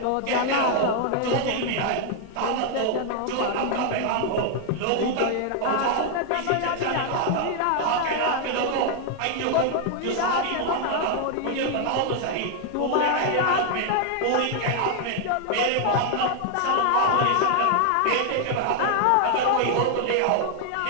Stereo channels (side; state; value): both; different; correlation 0.00